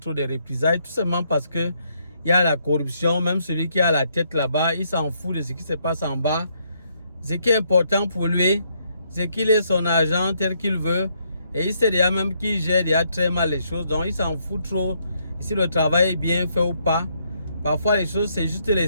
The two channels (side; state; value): both; inverted; correlation -0.73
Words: de représailles, tout simplement parce que il y a la corruption. Même celui qui a la tête là-bas, il s'en fout de ce qui se passe en bas. Ce qui est important pour lui, c'est qu'il ait son argent tel qu'il veut. Et il sait déjà même qu'il gère déjà très mal les choses. Donc il s'en fout trop si le travail est bien fait ou pas. Parfois les choses, c'est juste les